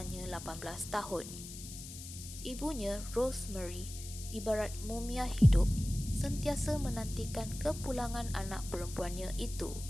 18 tahun. Ibunya, Rosemary, ibarat mumia hidup, sentiasa menantikan kepulangan anak perempuannya itu.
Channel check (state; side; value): noise; left; hiss, 12 dB below the sound